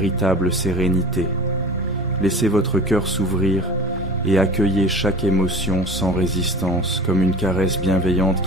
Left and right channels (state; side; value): normal; both; correlation 0.37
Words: sérénité. Laissez votre cœur s'ouvrir et accueillez chaque émotion sans résistance, comme une caresse bienveillante